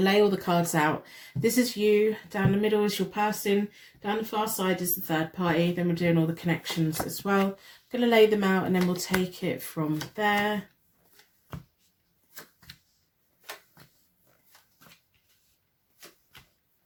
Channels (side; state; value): both; identical; correlation 1.00